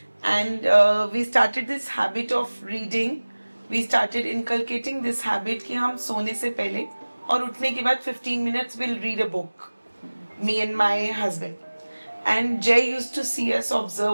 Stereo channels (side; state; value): both; inverted; correlation -1.00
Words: and we started this habit of reading. We started inculcating this habit कि हम सोने से पहले और उठने के बाद 15 minutes we'll read a book. Me and my husband. And Jay used to see us,